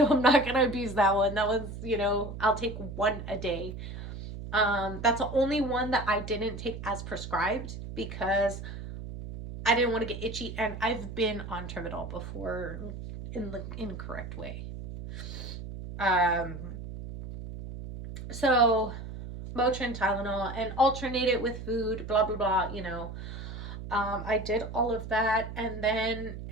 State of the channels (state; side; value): noise; right; hum, 9 dB below the sound